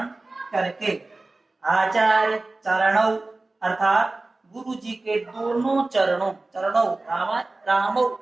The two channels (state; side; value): quieter; left; 3.1 dB